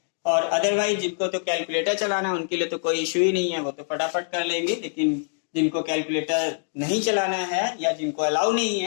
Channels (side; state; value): right; silent; digital silence